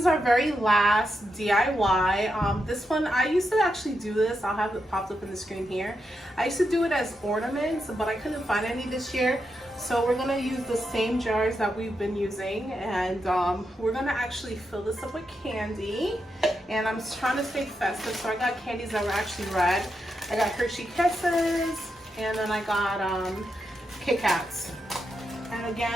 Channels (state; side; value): normal; both; correlation 0.85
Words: our very last DIY. This one, I used to actually do this. I'll have it popped up in the screen here. I used to do it as ornaments, but I couldn't find any this year. So we're gonna use the same jars that we've been using, and we're gonna actually fill this up with candy. And I'm trying to stay festive, so I got candies that were actually red. I got Hershey Kisses, and then I got Kit Kats. And